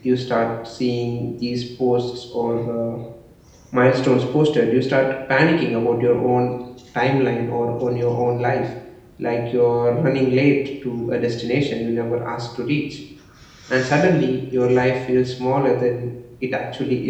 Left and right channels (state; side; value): identical; both; correlation 1.00